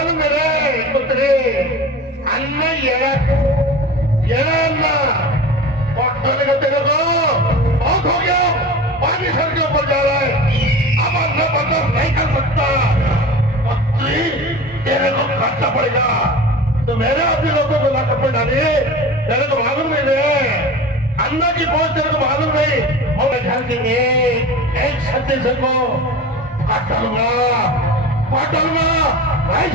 है रे पुत्री अन्न ये अन्न पट्टने का तेरे को बहुत हो गया. पानी सर के ऊपर जा रहा है. अब अन्न बर्दाश्त नहीं कर सकता. पुत्री तेरे को खर्चा पड़ेगा. तो मेरे अपने लोगों को लाकर पे डाली. तेरे को मालूम नहीं है अन्ना की पहुंच तेरे को मालूम नहीं. और घर के एक छत्तीस को काट डालूंगा नहीं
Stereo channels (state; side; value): normal; both; correlation 0.34